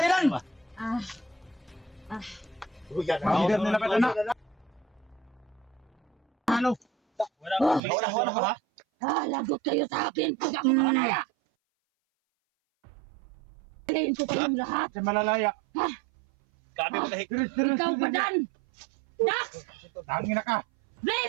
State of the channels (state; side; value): drops out; left; at 7.8 s